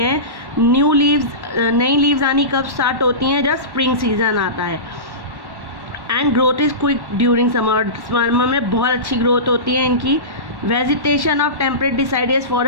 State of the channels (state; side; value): late; left; 1.1 ms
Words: नई लीव्स आनी कब स्टार्ट होती हैं? जब स्प्रिंग सीजन आता है। And growth is quick during summer में बहुत अच्छी ग्रोथ होती है इनकी। Vegetation of temperate deciduous